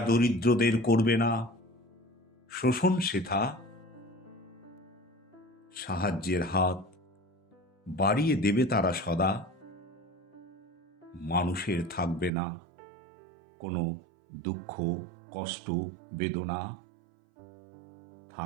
দরিদ্রদের করবে না শোষণ সেথা, সাহায্যের হাত বাড়িয়ে দেবে তারা সদা, মানুষের থাকবে না কোনো দুঃখ কষ্ট বেদনা,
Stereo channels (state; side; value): drops out; left; at 12.3 s